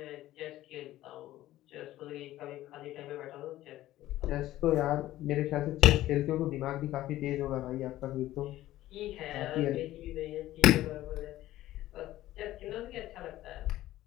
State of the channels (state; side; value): quieter; right; 14.9 dB